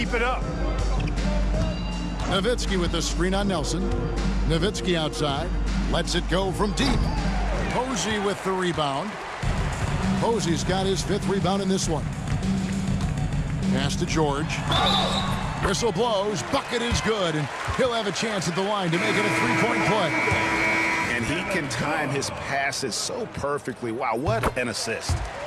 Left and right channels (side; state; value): both; identical; correlation 1.00